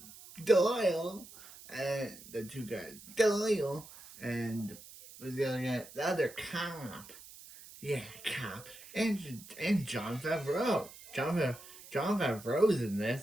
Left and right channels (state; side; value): noise; right; hiss, 18 dB below the sound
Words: Doyle, and the other guy, the other cop. Yeah, cop. And Jon Favreau. Jon Favreau's in